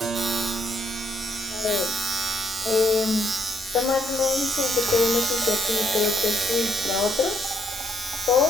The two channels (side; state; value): both; normal; correlation 0.72